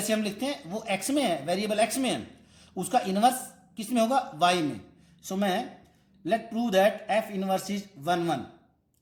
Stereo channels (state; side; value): identical; both; correlation 1.00